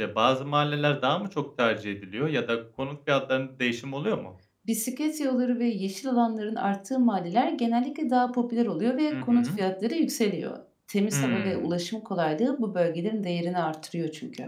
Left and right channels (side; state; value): both; identical; correlation 1.00